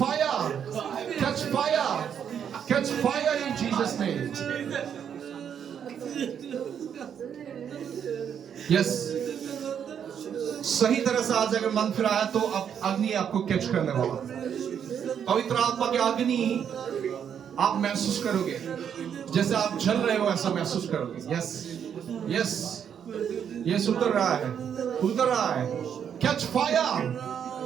catch fire, catch fire in Jesus name. Yes, सही तरह से आज अगर मन फिरा है तो अब अग्नि आपको कैच करने वाला। पवित्र आत्मा के अग्नि आप महसूस करोगे, जैसे आप जल रहे हो ऐसा महसूस करोगे। यस यस यस, उतर रहा है, उतर रहा है। Catch fire,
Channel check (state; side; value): quieter; left; 8.3 dB